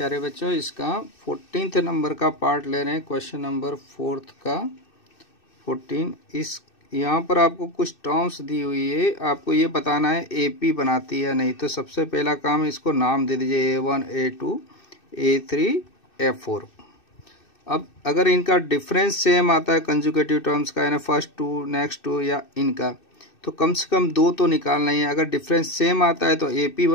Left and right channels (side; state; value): right; late; 2.6 ms